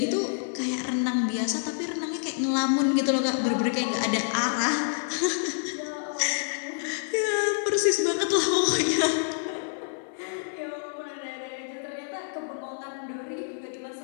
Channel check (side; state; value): right; silent; digital silence